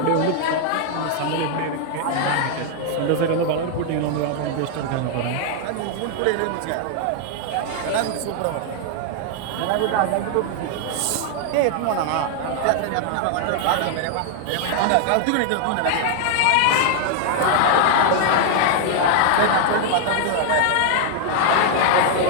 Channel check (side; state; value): both; different; correlation 0.00